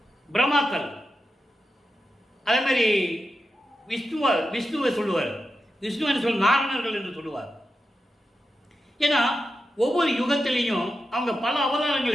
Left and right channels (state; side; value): normal; both; correlation 0.89